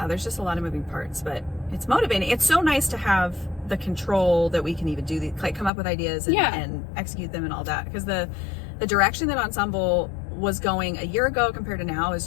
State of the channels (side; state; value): right; drops out; at 5.7 s